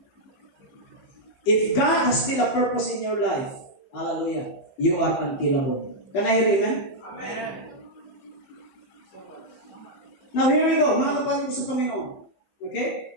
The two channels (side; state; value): right; late; 15 ms